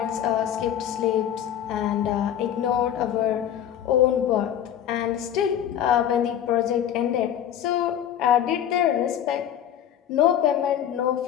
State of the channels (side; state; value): right; quieter; 10.3 dB